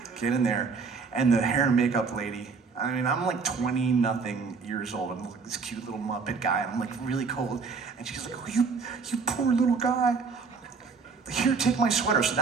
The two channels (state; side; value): quieter; left; 5.0 dB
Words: Get in there, and the hair and makeup lady, I mean, I'm like 20-nothing years old. I'm like this cute little Muppet guy, and I'm like really cold. And she's like, oh, you poor little guy. Here, take my sweater. So